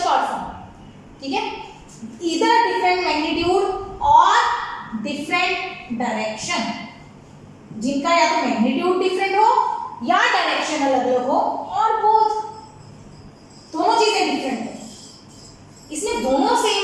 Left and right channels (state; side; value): identical; both; correlation 1.00